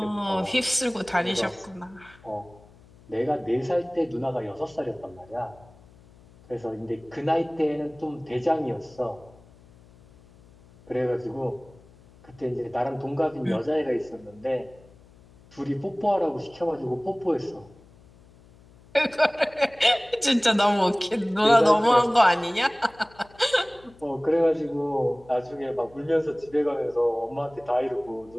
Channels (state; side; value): noise; left; hum, 26 dB below the sound